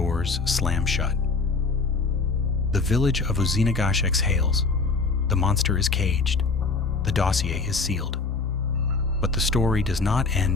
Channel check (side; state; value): right; quieter; 4.1 dB